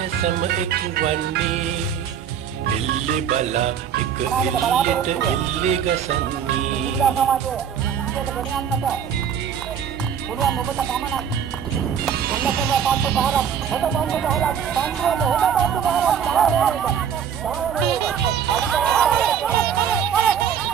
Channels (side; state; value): left; quieter; 8.2 dB